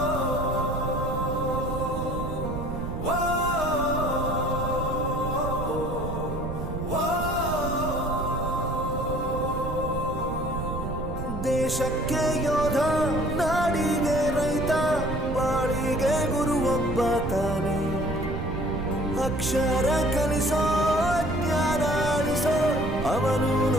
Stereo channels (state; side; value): noise; right; rumble, 5 dB below the sound